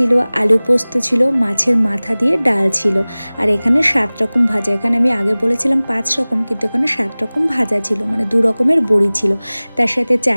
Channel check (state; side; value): inverted; both; correlation -0.99